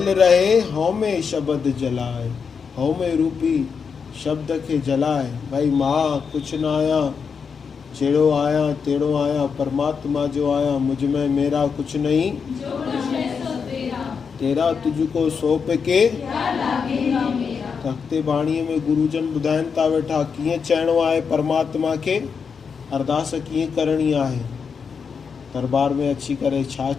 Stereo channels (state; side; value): quieter; right; 6.0 dB